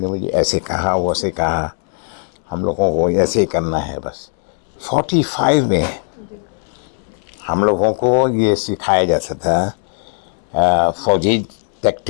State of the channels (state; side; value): silent; right; digital silence